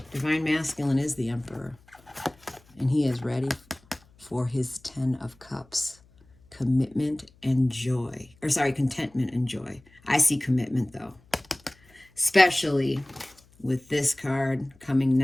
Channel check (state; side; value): noise; left; hum, 29 dB below the sound